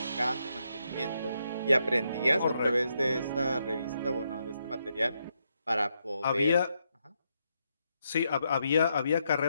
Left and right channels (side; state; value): both; inverted; correlation -0.80